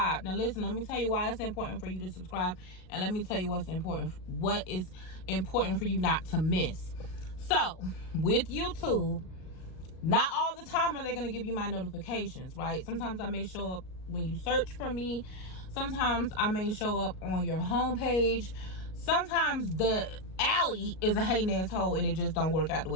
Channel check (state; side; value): late; right; 38 ms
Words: Now listen, let me tell you why it's important for you to subscribe, and let me tell you what is important for you not to miss. So with YouTube, not all the time are they going to give you my notifications, right? Sometimes I may show up when you search for me. Sometimes I may show up on your homepage. Sometimes the alley is a hating asshole and it just don't work out the